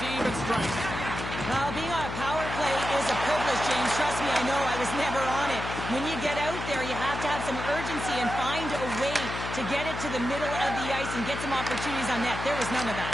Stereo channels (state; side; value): noise; left; hum, 6 dB below the sound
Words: to even strength. Well, being on a power play is a privilege, James. Trust me, I know. I was never on it. When you get out there, you have to have some urgency and find a way to get it to the middle of the ice and get some opportunities on net. There was none of